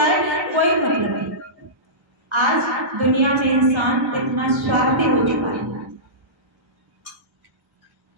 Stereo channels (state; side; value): late; left; 1.4 ms